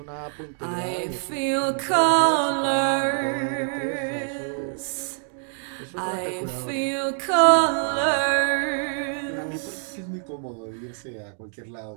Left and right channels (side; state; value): left; silent; digital silence